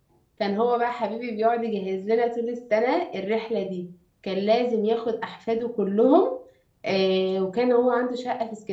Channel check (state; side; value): identical; both; correlation 1.00